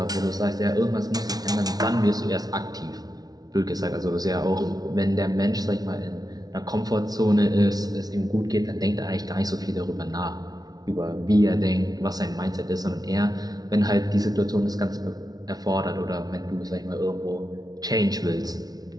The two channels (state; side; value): late; left; 0.19 ms